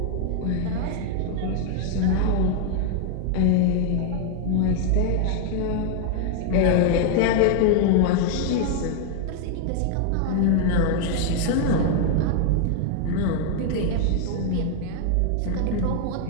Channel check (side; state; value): both; different; correlation 0.00